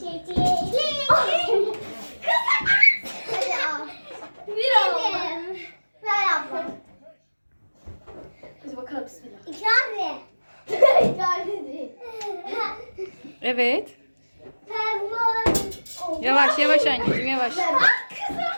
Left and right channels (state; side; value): inverted; both; correlation -1.00